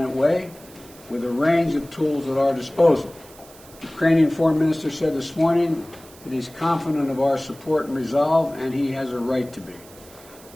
way with a range of tools at our disposal. The Ukrainian foreign minister said this morning that he's confident of our support and resolve, and he has a right to be.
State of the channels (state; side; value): noise; right; hiss, 22 dB below the sound